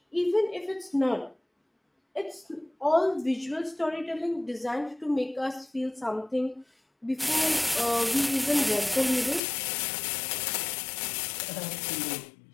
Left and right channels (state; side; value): drops out; right; at 9.4 s